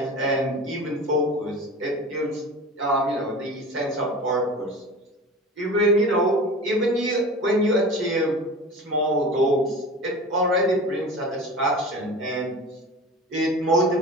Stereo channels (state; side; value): normal; both; correlation 0.34